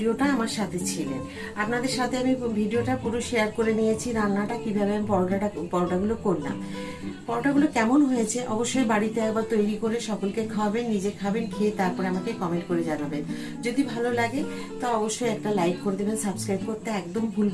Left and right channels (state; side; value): identical; both; correlation 1.00